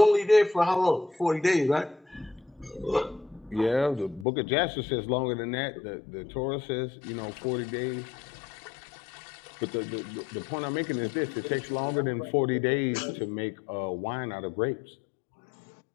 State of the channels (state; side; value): drops out; right; at 4.2 s